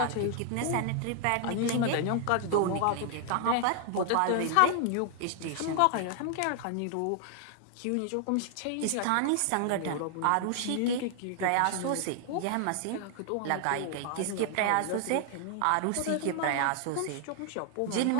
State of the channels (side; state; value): both; different; correlation 0.00